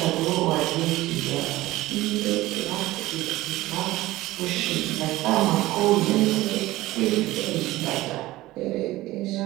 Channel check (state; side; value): quieter; left; 17.6 dB